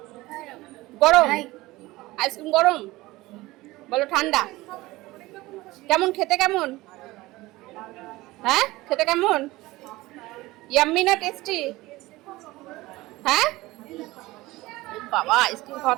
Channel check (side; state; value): left; quieter; 19.4 dB